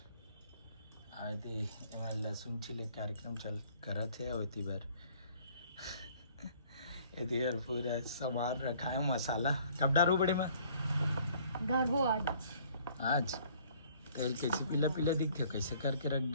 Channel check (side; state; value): both; inverted; correlation -0.58